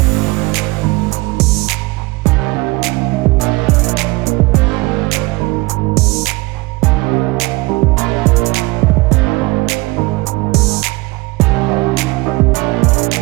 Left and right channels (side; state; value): left; quieter; 23.2 dB